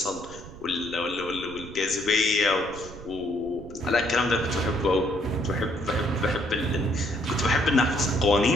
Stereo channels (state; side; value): noise; right; rumble, 16 dB below the sound